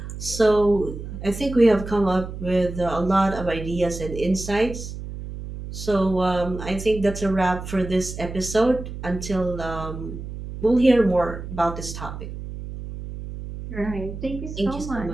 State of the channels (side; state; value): right; noise; hum, 9 dB below the sound